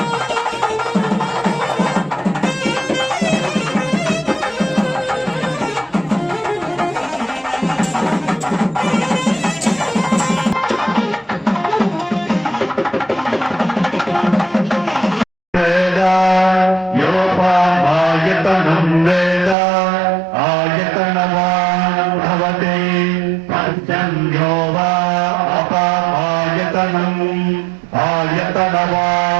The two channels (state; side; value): drops out; left; at 19.6 s